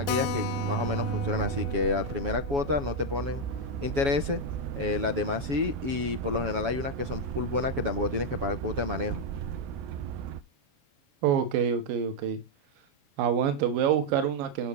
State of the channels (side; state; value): left; late; 7.2 ms